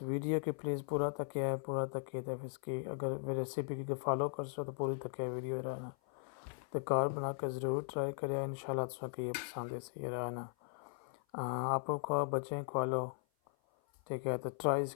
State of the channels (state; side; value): silent; right; 52 dB below the other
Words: वीडियो के प्लीज़ पूरा तकिए तो इसकी अगर रेसिपी की फॉलो कर सो तो पूरी तकिए वीडियो रहना तो कार बना कर ज़रूर ट्राई करें। इंशाल्लाह तुझे ये पसंद है सही रहना। आपको खवा बच्चे खवा लो, ठीक है, तो ट्राई